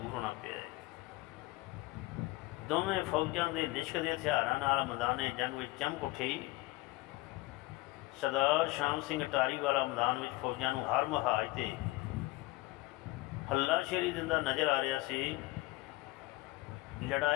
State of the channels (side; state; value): right; quieter; 20.5 dB